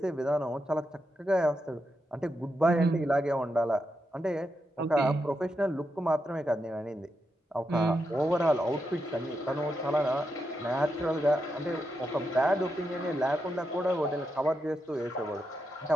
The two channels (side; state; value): both; normal; correlation 0.85